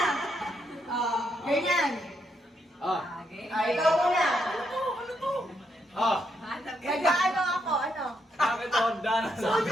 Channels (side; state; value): both; normal; correlation 0.78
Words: Ganyan. Ikaw muna. Nag-ano ako, ano? Bakit Honda na sa